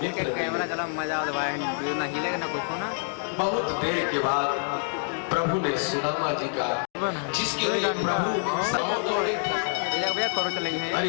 कैमरा चला मजा ना हिलेगा ना कुछ ना। बहुत देर के बाद प्रभु ने सुदामा जी का, जिसके लिए प्रभु समोदौड़े थे,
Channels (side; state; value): right; silent; 60 dB below the other